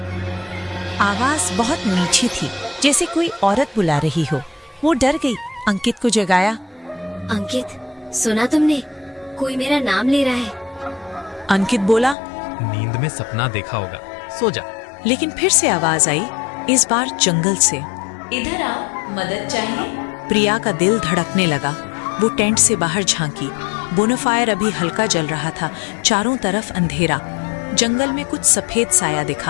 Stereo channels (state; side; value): drops out; right; at 12.2 s